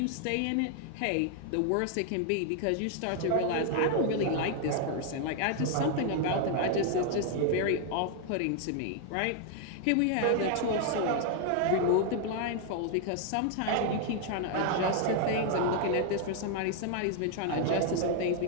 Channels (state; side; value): different; both; correlation 0.00